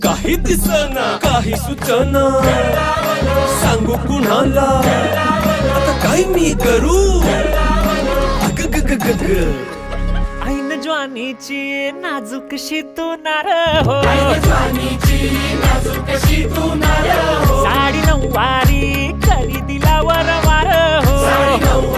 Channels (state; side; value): identical; both; correlation 1.00